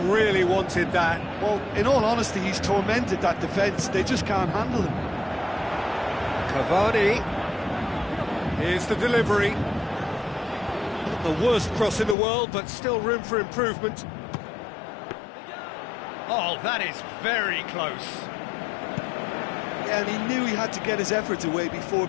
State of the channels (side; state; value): right; drops out; at 12.2 s